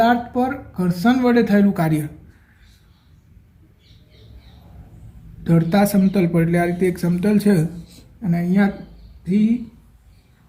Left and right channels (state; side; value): identical; both; correlation 1.00